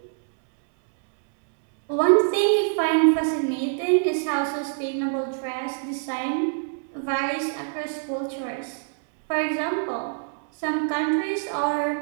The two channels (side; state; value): left; silent; digital silence